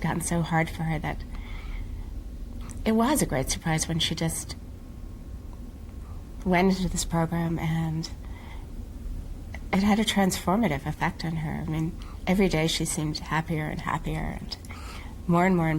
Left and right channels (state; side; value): identical; both; correlation 1.00